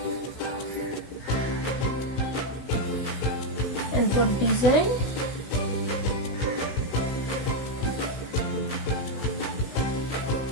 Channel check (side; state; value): right; late; 16 ms